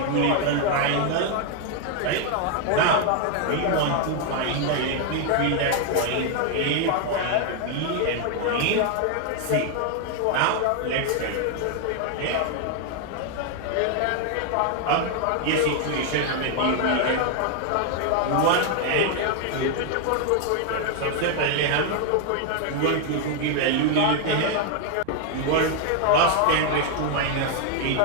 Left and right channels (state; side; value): different; both; correlation 0.00